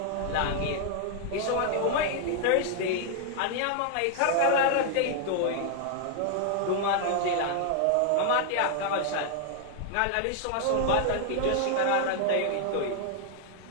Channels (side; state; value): both; different; correlation 0.00